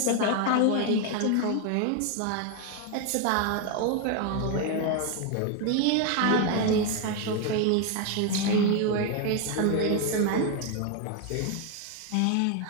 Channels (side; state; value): both; different; correlation 0.01